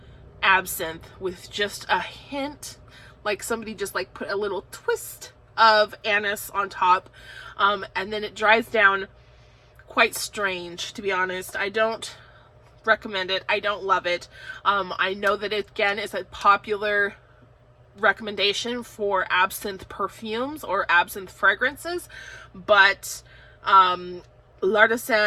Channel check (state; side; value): identical; both; correlation 1.00